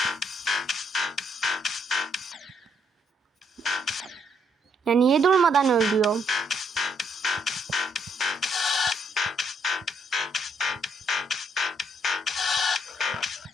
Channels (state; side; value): normal; both; correlation 0.72